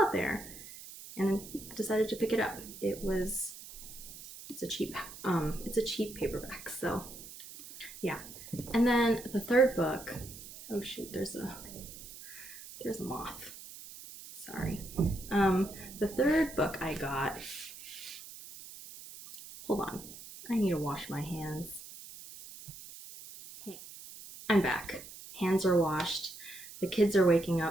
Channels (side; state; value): right; noise; hiss, 14 dB below the sound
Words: it there and decided to pick it up. It's a cheap paperback, so yeah. And then the third book, oh shoot, there's a moth. Sorry. The third book I got, hold on, I need to wash my hands. Hey, I'm back. Hands are washed. The kids are waking